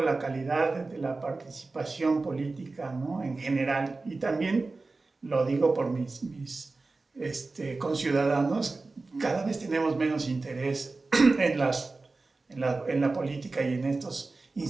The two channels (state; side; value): quieter; left; 3.6 dB